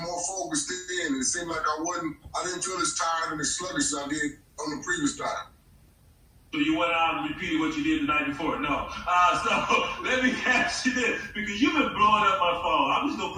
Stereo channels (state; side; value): identical; both; correlation 1.00